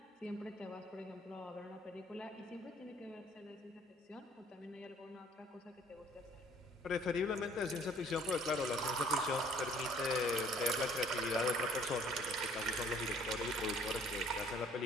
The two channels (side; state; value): both; normal; correlation 0.57